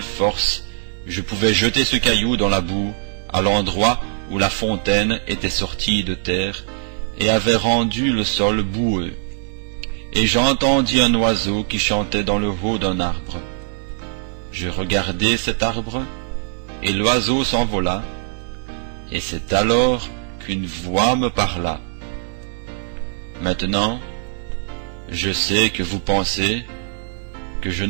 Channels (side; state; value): left; silent; 62 dB below the other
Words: force je pouvais jeter ce caillou dans la boue, à l'endroit où la fontaine était sortie de terre et avait rendu le sol boueux. Et j'entendis un oiseau qui chantait dans le haut d'un arbre. Je regardai cet arbre, et l'oiseau s'envola, et c'est alors qu'une voix me parla. Maintenant, je sais que vous pensez que je